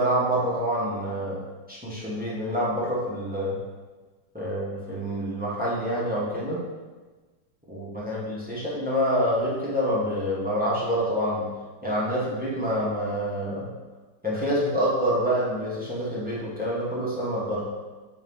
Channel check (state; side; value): normal; both; correlation 0.03